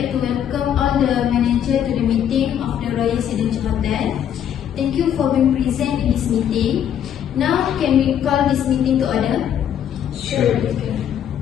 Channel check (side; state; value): right; quieter; 9.5 dB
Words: to welcome all the manager to the meeting of the Royal Residential Hotel. Thank you for being present in this meeting. Now, can we call this meeting to order? Sure.